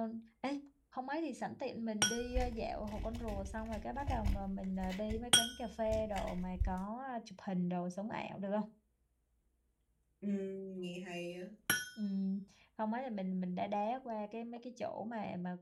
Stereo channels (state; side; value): identical; both; correlation 1.00